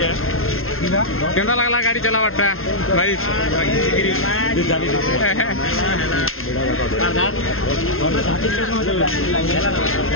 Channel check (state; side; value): late; right; 0.61 ms